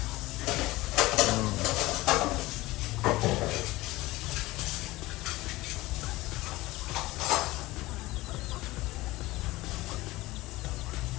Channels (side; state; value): right; quieter; 19.4 dB